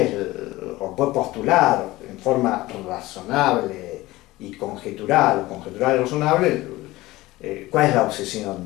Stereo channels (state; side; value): quieter; right; 18.7 dB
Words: puede postular en forma razonable y conjetural y razonable, cuál es la obsesión